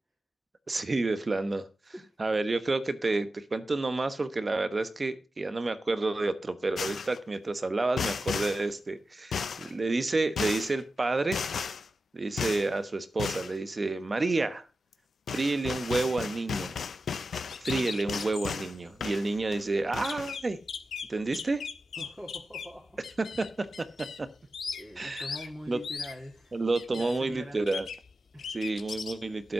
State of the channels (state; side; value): normal; both; correlation 0.92